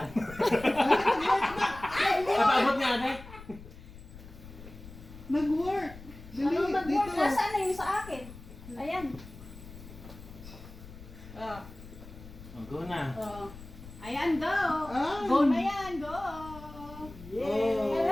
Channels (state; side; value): noise; left; rumble, 16 dB below the sound